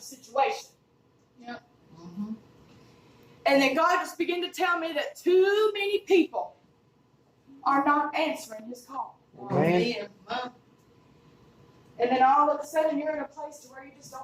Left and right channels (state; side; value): identical; both; correlation 1.00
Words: situation. Yep. Mm-hmm. And then God just began to tell me that too many people are not answering his call. Amen. And then all of a sudden you're in a place to where you just